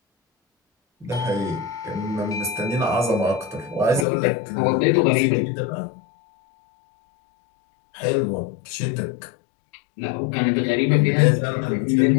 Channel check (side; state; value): right; drops out; at 4.0 s